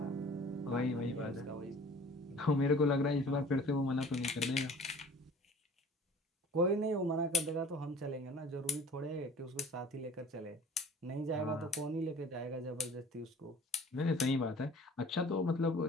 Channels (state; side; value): normal; both; correlation 0.47